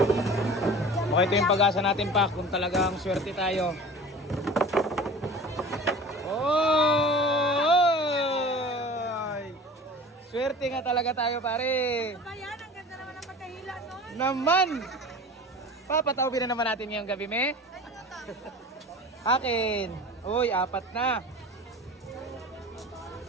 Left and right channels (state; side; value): normal; both; correlation 0.39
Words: Okay, ito yung pag-asa natin pa kung talagang swerte tayo. Oh! Swerte nga talaga tayo pare. Ayan, ang ganda naman ang pagkahila nun. Naman! Papatawin na naman natin ngayong gabi, me. Akin. Uy, 4 na.